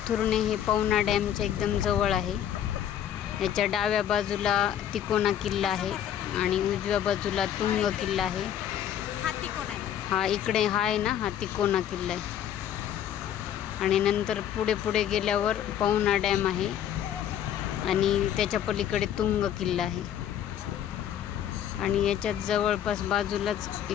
हे पवना डॅमच्या एकदम जवळ आहे. याच्या डाव्या बाजूला तिकोना किल्ला आहे आणि उजव्या बाजूला तुंग किल्ला आहे. हा इकडे हा आहे ना, हा तिकोना किल्ला आहे. आणि नंतर पुढे गेल्यावर पवना डॅम आहे आणि त्याच्या पलीकडे तुंग किल्ला आहे. आणि याच्यात जवळपास बाजूलाच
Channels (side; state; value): right; quieter; 10.3 dB